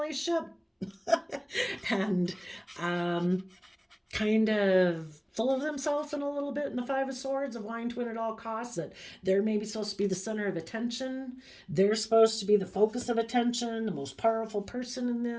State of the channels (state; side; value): identical; both; correlation 1.00